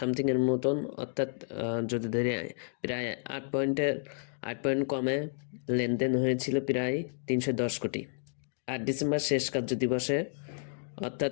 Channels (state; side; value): silent; right; 57 dB below the other